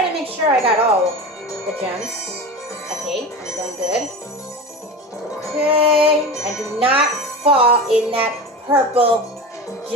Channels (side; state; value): both; normal; correlation 0.29